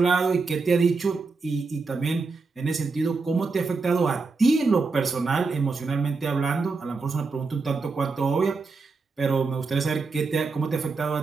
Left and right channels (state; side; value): quieter; left; 4.2 dB